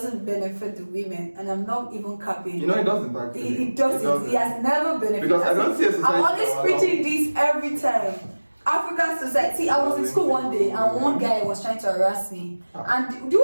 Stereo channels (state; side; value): inverted; both; correlation -1.00